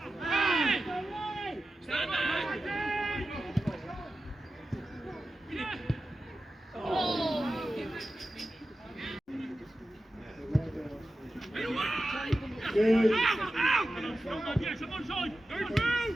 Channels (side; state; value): both; normal; correlation 0.93